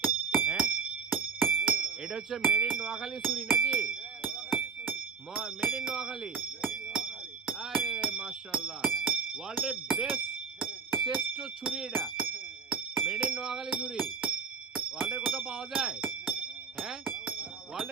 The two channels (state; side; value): quieter; left; 5.6 dB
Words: হ্যাঁ, এটা হচ্ছে মেড ইন নোয়াখালী ছুরি নাকি? Made in Noakhali. আরে মাশাআল্লাহ, ওয়ার্ল্ডের বেস্ট শ্রেষ্ঠ ছুরি এটা, মেড ইন নোয়াখালী ছুরি। ওয়ার্ল্ডের কোথাও পাওয়া যায়? হ্যাঁ,